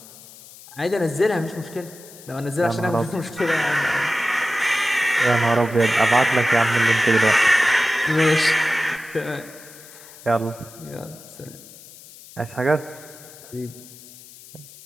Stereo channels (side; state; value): left; noise; hiss, 20 dB below the sound